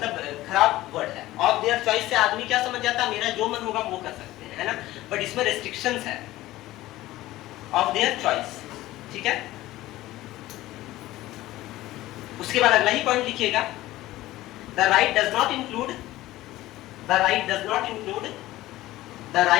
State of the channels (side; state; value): right; quieter; 16.5 dB